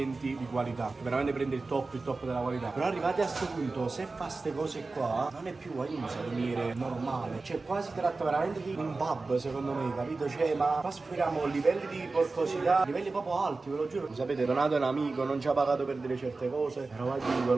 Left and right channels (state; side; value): quieter; left; 3.7 dB